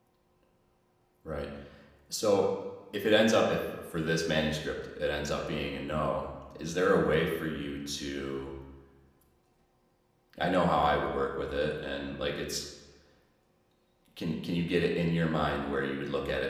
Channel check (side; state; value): both; identical; correlation 1.00